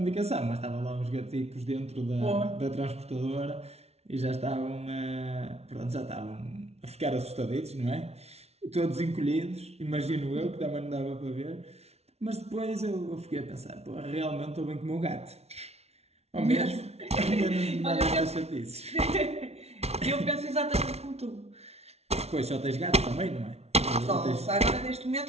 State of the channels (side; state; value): left; late; 0.31 ms